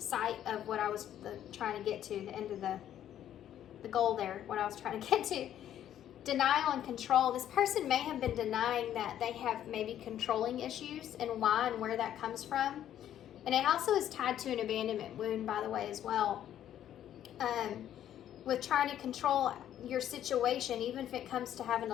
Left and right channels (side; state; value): right; quieter; 11.0 dB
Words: of what I was trying to get to, the end of the goal there, what I was trying to get to. Denial and control. This person may have been denying that they have maybe controlling issues and why and where that comes from. And it also is tied to an abandonment wound, by the way, as well. With trying to control your situation, even if it comes to having